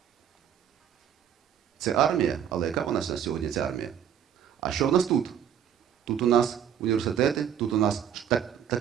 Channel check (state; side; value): quieter; left; 9.1 dB